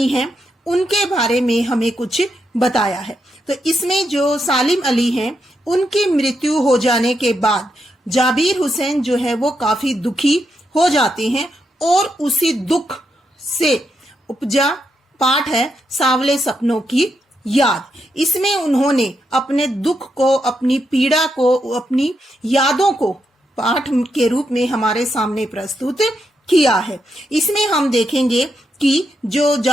हैं उनके बारे में हमें कुछ बताया है। तो इसमें जो सालिम अली हैं उनकी मृत्यु हो जाने के बाद जाबिर हुसैन जो है वो काफी दुखी हो जाते हैं और उसी दुख से उपजा पाठ है सांवले सपनों की याद। इसमें उन्होंने अपने दुख को, अपनी पीड़ा को, अपनी यादों को पाठ के रूप में हमारे सामने प्रस्तुत किया है। इसमें हम देखेंगे कि जो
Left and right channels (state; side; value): normal; both; correlation 0.82